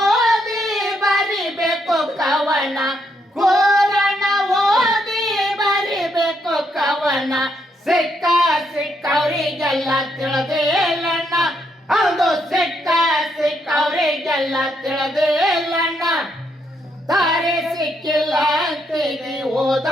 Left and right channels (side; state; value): both; normal; correlation 0.76